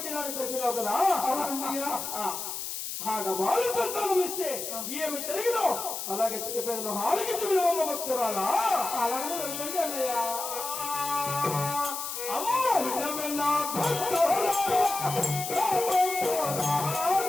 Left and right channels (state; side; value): noise; left; hiss, 5 dB below the sound